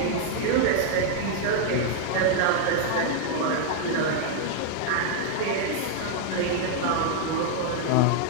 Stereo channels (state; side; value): different; both; correlation 0.00